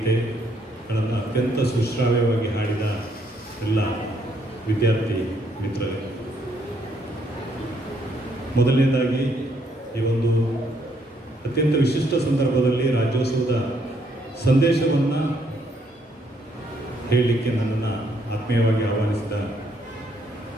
ಅತ್ಯಂತ ಸುಶ್ರಾವ್ಯವಾಗಿ ಹಾಡಿದ ಎಲ್ಲ ವಿದ್ಯಾರ್ಥಿ ಮಿತ್ರರೇ, ಮೊದಲನೇದಾಗಿ ಈ ಒಂದು ಅತ್ಯಂತ ವಿಶಿಷ್ಟ ಸಂದರ್ಭದಲ್ಲಿ ರಾಜ್ಯೋತ್ಸವದ ಸಂದೇಶವನ್ನು ಹೇಳಲಿಕ್ಕೆ ನನ್ನನ್ನು ಆತ್ಮೀಯವಾಗಿ ಆಹ್ವಾನಿಸಿದ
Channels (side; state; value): both; normal; correlation 0.71